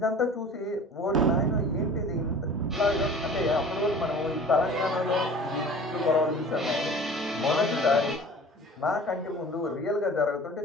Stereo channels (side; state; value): both; normal; correlation 0.43